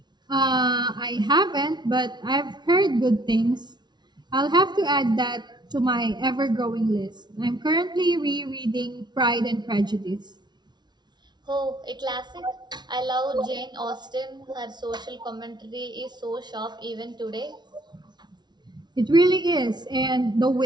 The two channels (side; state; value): left; late; 0.20 ms